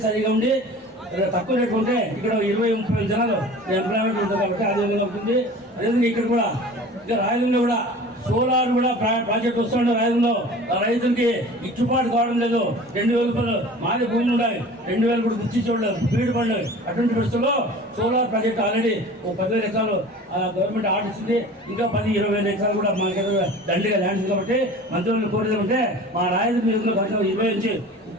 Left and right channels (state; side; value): normal; both; correlation 0.41